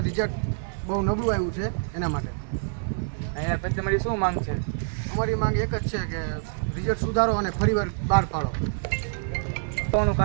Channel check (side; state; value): left; silent; digital silence